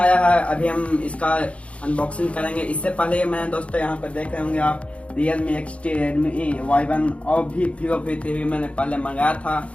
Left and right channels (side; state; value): right; late; 0.062 ms